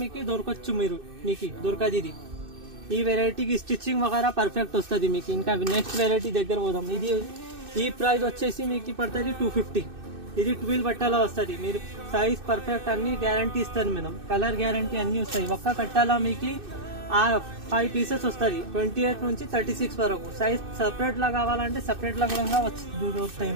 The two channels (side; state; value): left; late; 2.6 ms